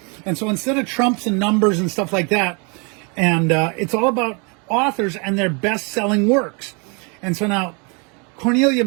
And so instead of trumps and numbers and stuff like that, and it's all about authors and their best-selling works. And so now,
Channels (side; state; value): left; quieter; 32.9 dB